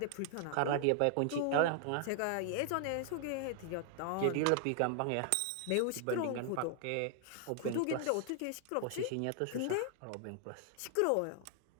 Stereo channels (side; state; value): both; different; correlation 0.00